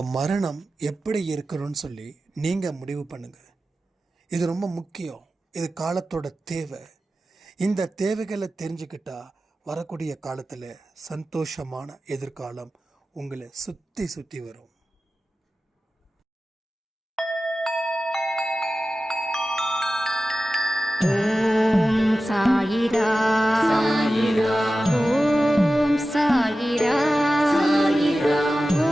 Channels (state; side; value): normal; both; correlation 0.94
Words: மரணம் எப்படி இருக்கணும்னு சொல்லி நீங்கள் முடிவு பண்ணுங்கள். இது ரொம்ப முக்கியம். இது காலத்தோட தேவை. இந்த தேவைகளை தெரிஞ்சுக்கிட்டா வரக்கூடிய காலத்தில் சந்தோஷமான எதிர்காலம் உங்களை சுற்றி சுற்றி வரும். ஓம் சாயிரா சாயிரா, ஓம் சாயிரா சாயிரா,